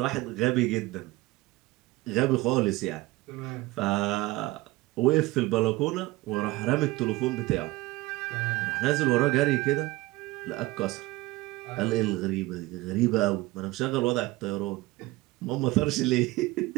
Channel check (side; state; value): left; quieter; 19.9 dB